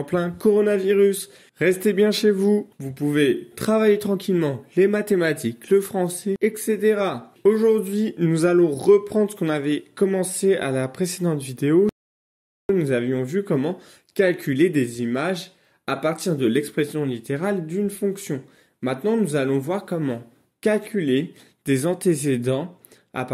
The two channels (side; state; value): both; identical; correlation 1.00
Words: plein coronavirus. Restez bien chez vous. Vous pouvez travailler tranquillement les mathématiques, le français, etc. Aujourd'hui, nous allons reprendre ce qu'on avait commencé à la précédente vidéo. Nous avions vu comment calculer des images à partir de l'expression littérale d'une fonction. Maintenant, nous allons voir comment calculer des antécédents à